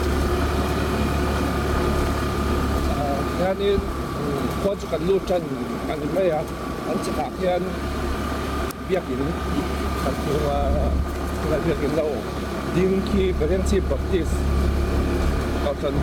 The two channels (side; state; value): both; identical; correlation 1.00